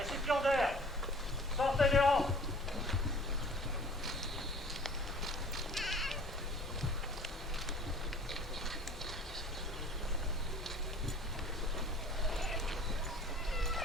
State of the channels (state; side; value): normal; both; correlation 0.48